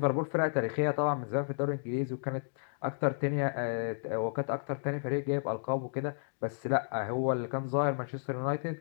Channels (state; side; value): silent; right; digital silence